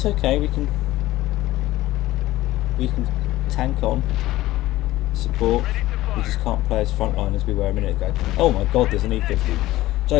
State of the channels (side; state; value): right; quieter; 16.5 dB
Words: okay. We can tank on, support. We just can't play as frontline as we were a minute ago. Oh my god, there's an E50.